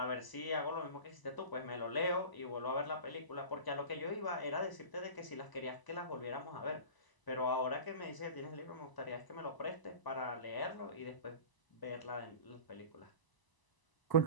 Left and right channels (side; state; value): right; late; 1.0 ms